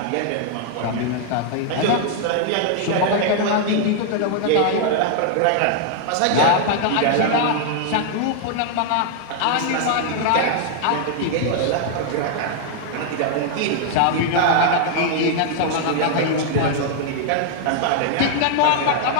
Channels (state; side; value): different; both; correlation 0.00